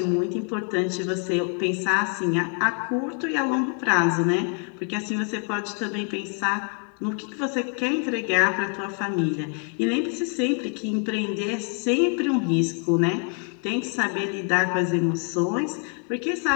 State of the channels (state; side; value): quieter; right; 37.1 dB